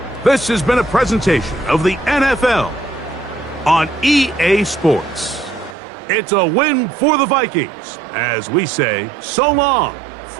This has been a presentation of the NFL on EA Sports. It's a win for the Vikings, as we say so long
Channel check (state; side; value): drops out; left; at 5.8 s